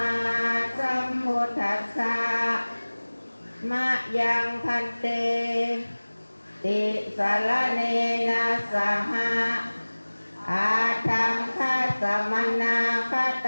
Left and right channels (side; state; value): both; inverted; correlation -1.00